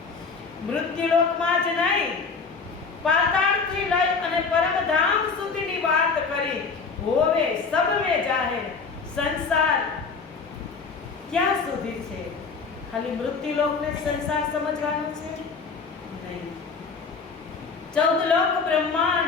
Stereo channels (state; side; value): quieter; right; 5.0 dB